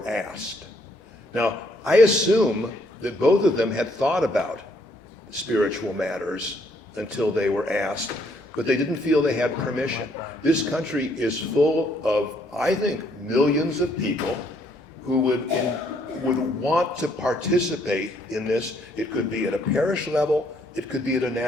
asked. Now, I assume that both of them had thought about spiritual matters until they were asked, but they didn't feel they had permission. This country is full of, I think, millions of people who would want to participate in this. It could be at a parish level, it could be at a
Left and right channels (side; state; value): both; normal; correlation 0.69